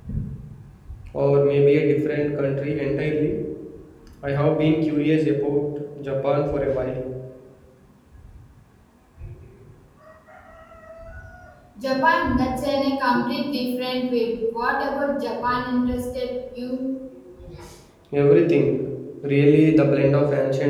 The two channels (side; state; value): both; identical; correlation 1.00